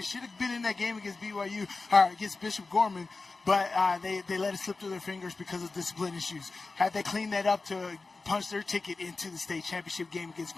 Should have been in that game against BYU, or against Bishop Gorman, but they let it slip through their fingers because of discipline issues. Had they cleaned that up to punch their ticket into the state championship game against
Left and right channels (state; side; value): quieter; right; 3.8 dB